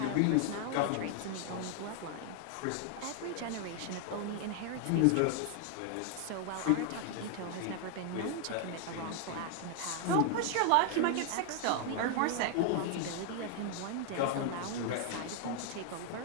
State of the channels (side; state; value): both; different; correlation 0.00